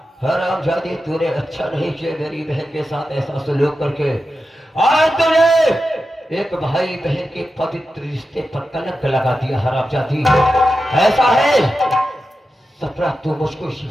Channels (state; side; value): normal; both; correlation 0.91